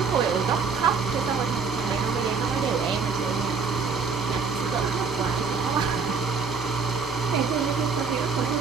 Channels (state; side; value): quieter; left; 5.4 dB